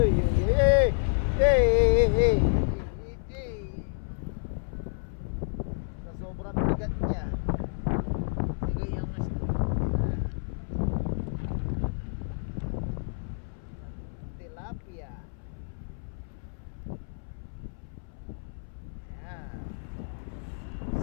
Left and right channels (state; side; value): silent; right; 58 dB below the other